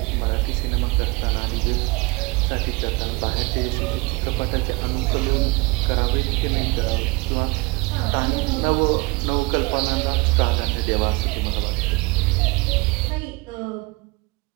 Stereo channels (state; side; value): quieter; left; 25.2 dB